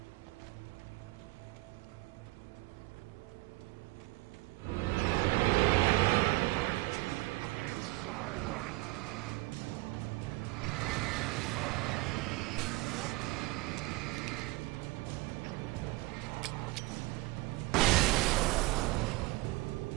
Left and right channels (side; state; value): left; quieter; 21.5 dB